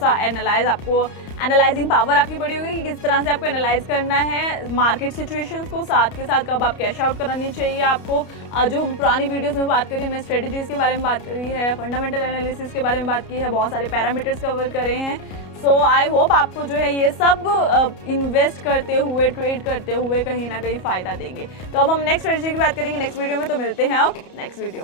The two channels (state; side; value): late; right; 31 ms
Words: आपको एनालाइजिंग पावर आपकी बड़ी होगी कि किस तरह से आपको एनालाइज करना है मार्केट सिचुएशंस को, साथ के साथ कब आप कैश आउट करानी चाहिए आपको। जो पुरानी वीडियोस में बात करी, हमने स्ट्रेटेजीज के बारे में बात करी है, फंडामेंटल एनालिसिस के बारे में बात की है, बहुत सारे पैरामीटर्स कवर करे हैं। सो आई होप आपको जो है ये सब इन्वेस्ट करते हुए, ट्रेड करते हुए कहीं ना कहीं फायदा देंगे। तो अब हम नेक्स्ट स्ट्रेटेजी की बात करेंगे नेक्स्ट वीडियो में, तो मिलते हैं नेक्स्ट वीडियो